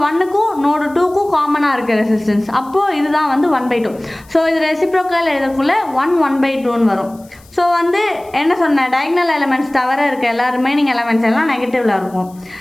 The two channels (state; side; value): noise; left; hiss, 28 dB below the sound